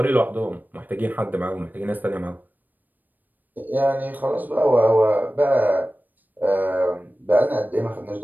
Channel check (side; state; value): left; late; 0.087 ms